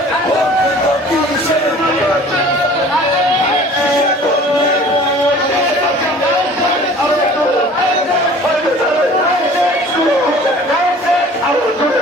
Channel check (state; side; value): normal; both; correlation 0.47